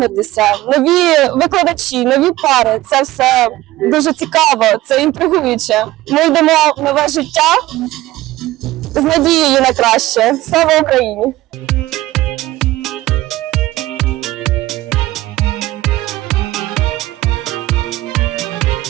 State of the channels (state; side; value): quieter; left; 16.8 dB